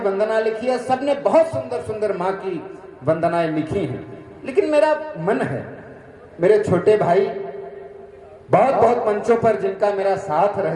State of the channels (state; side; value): identical; both; correlation 1.00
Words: लिखी है, सब ने बहुत सुंदर सुंदर माँ की वंदनाएं लिखी हैं। लेकिन मेरा मन है, मेरे छोटे भाई बहुत बहुत मंचों पर जिनका मेरा साथ